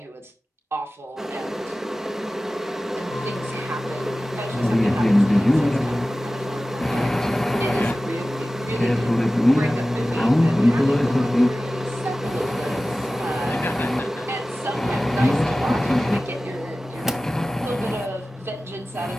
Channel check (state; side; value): normal; both; correlation 0.96